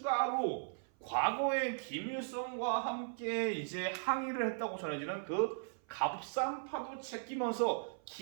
과거에 김일성과 함께 이제 항의를 했다고 전해지는 그 갑산파도 제끼면서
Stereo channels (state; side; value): silent; left; 53 dB below the other